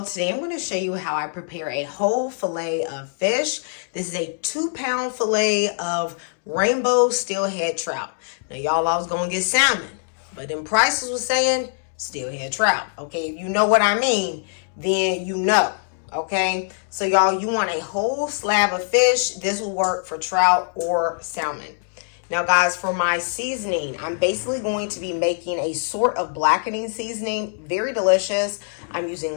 today I'm going to show you how I prepare a whole fillet of fish. This is a 2-pound fillet of rainbow steelhead trout. Now y'all, I was going to get salmon, but then prices was saying steelhead trout. Okay, if you know what I mean, then you know. Okay, so y'all, you want a whole slab of fish. This will work for trout or salmon. Now guys, for my seasoning, I'm basically going to be making a sort of blackening seasoning. Very delicious. I'm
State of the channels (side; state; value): right; silent; digital silence